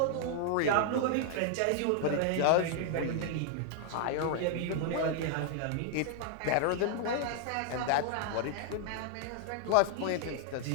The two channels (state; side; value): different; both; correlation 0.00